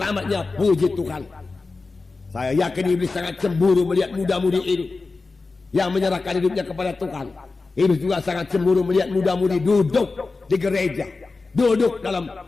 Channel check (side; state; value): right; quieter; 3.9 dB